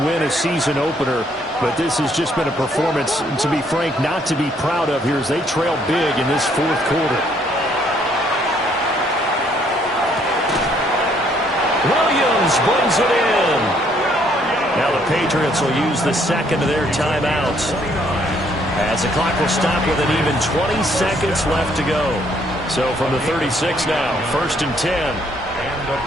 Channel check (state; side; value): normal; both; correlation 0.67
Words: win a season opener. But this has just been a performance, to be frank, not to be proud of here as they trail big in this fourth quarter. Williams brings it in. Now the Patriots will use the second of their timeouts, as the clock will stop with an even 20 seconds left to go. So from the 36 now, 1st and 10. And the